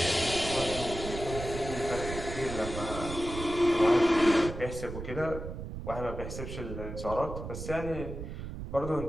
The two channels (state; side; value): noise; right; rumble, 8 dB below the sound